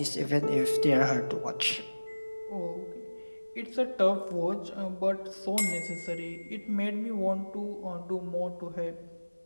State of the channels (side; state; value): both; inverted; correlation -1.00